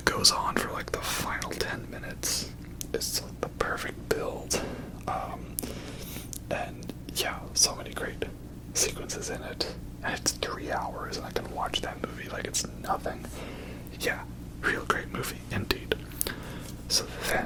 goes on for like the final 10 minutes. It's like the perfect build. And yeah, so many great sequences in it. And it's 3 hours, and I can watch that movie like it's nothing. Yeah, real great movie indeed. So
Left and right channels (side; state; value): both; identical; correlation 1.00